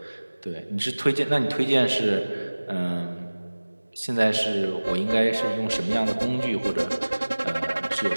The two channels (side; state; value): both; inverted; correlation -1.00